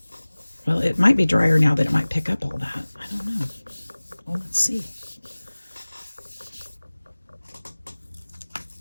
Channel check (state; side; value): inverted; both; correlation -1.00